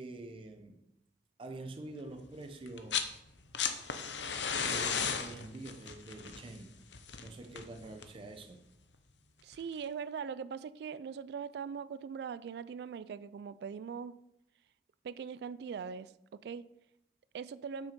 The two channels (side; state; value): both; normal; correlation 0.04